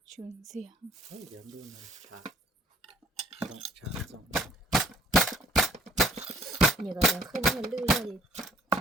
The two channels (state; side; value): normal; both; correlation 0.60